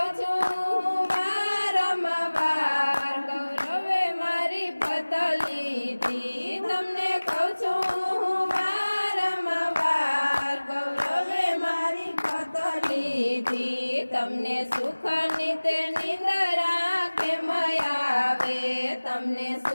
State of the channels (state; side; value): inverted; both; correlation -1.00